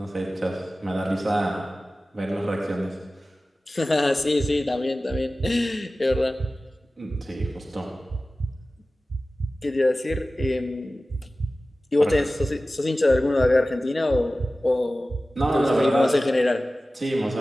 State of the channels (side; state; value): both; normal; correlation 0.96